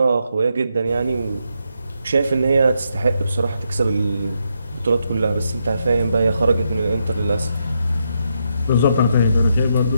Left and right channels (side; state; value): both; inverted; correlation -0.80